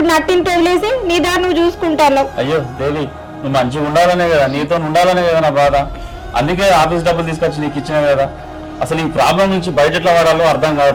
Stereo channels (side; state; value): both; identical; correlation 1.00